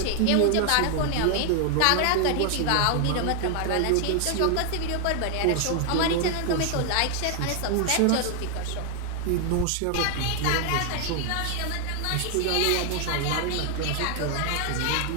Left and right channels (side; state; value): both; different; correlation 0.00